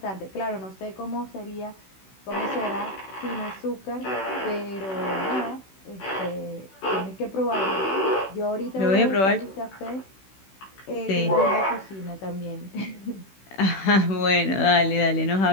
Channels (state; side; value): late; right; 16 ms